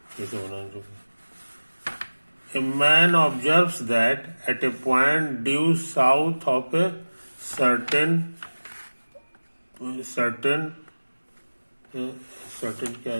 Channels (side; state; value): both; inverted; correlation -1.00